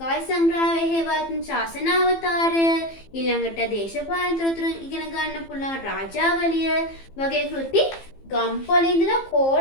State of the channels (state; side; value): late; right; 15 ms